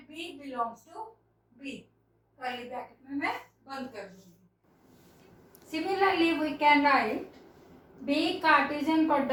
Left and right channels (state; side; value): identical; both; correlation 1.00